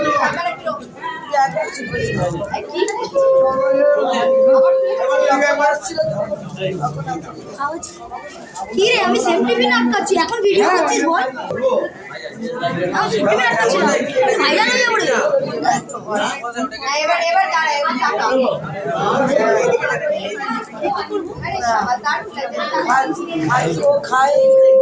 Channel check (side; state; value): both; identical; correlation 1.00